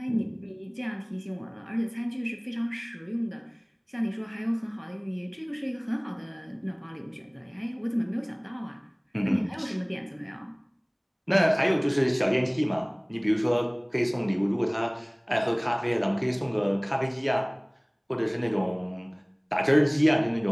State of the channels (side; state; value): both; identical; correlation 1.00